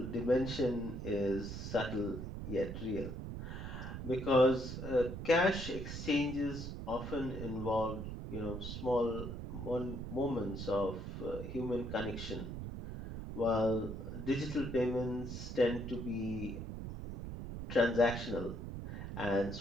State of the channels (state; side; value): noise; right; rumble, 7 dB below the sound